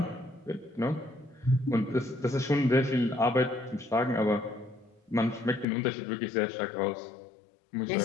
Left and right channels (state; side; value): drops out; right; at 5.7 s